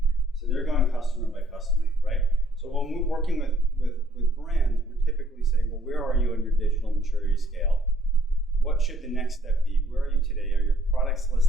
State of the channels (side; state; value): both; normal; correlation 0.65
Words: So they're going customer by customer, right? So when we're working with brands, we're typically saying, well, where are you on your digital maturity scale? What should the next step be? Where are you today? Are your products